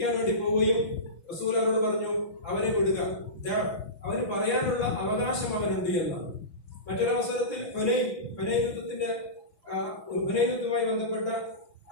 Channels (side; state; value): right; late; 6.0 ms